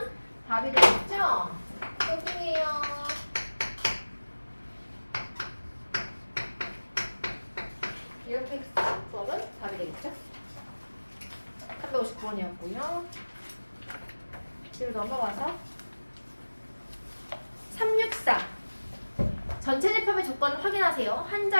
답이 되겠죠? 여기에요. 이렇게 수업은 답이 되겠죠? 359번이었고요. 뒤로 넘어가서 364 전체 집합의 조건을 확인하세요. 한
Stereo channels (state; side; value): inverted; both; correlation -1.00